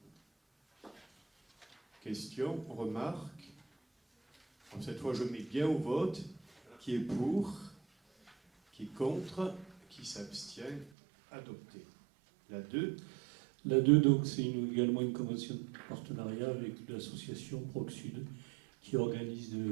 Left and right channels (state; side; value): drops out; left; at 10.9 s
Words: Question, remarque. Alors, cette fois, je mets bien au vote. Qui est pour? Qui est contre? Qui s'abstient? Adopté. La 2. La 2, donc, c'est également une convention de partenariat avec l'association Proc Sud qui organise